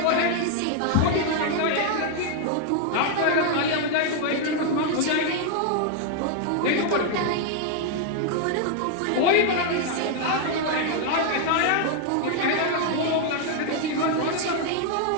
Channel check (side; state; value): both; different; correlation 0.00